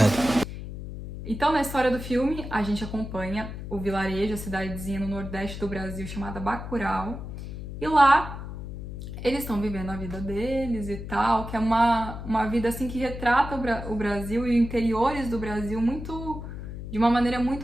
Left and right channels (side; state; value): left; noise; hum, 9 dB below the sound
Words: Então na história do filme a gente acompanha o vilarejo, a cidadezinha no nordeste do Brasil chamada Bacurau. E lá eles estão vivendo a vida deles e tal, que é uma vida assim que retrata o Brasil e os interiores do Brasil de uma maneira